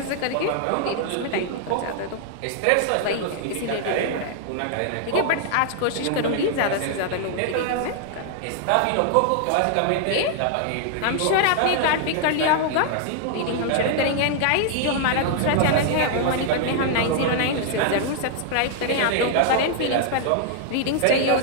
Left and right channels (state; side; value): different; both; correlation -0.01